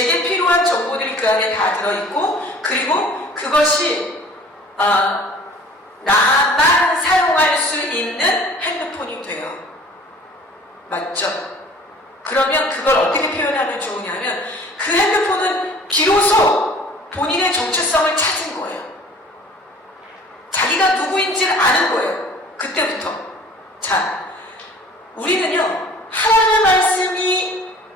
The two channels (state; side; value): normal; both; correlation 0.48